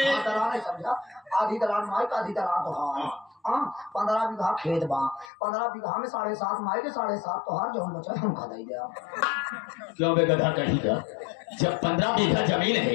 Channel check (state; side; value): drops out; right; at 5.3 s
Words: हाँ, दलान नहीं समझा। आधी दलान माई का आधी दलान तोहार। हाँ 15 बीघा खेत बा, 15 बीघा में 7.5 माई के 7.5 तोहार, जो हम बचा हमका दे दिया। क्यों बे गधा कहीं का? जब 15 बीघा जमीन